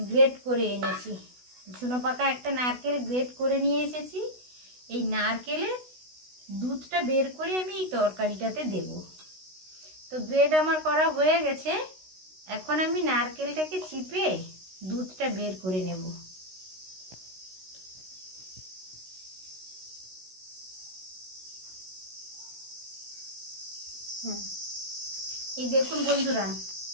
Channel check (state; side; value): late; left; 16 ms